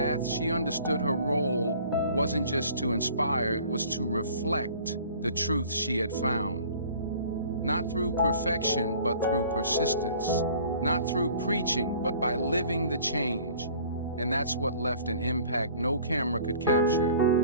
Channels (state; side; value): inverted; both; correlation -0.50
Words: she understood her role wasn't just to inspire, it was to reflect the truth she had found. Not through perfection, but through persistence. Not through preaching, but by living the change. And that's what left an impact no camera could capture.